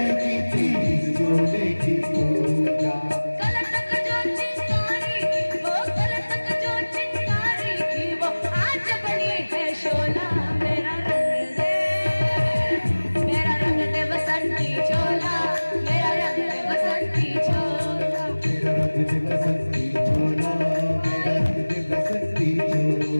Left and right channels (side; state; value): both; inverted; correlation -1.00